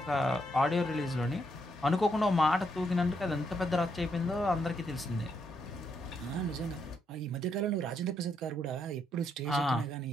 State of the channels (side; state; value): both; normal; correlation 0.77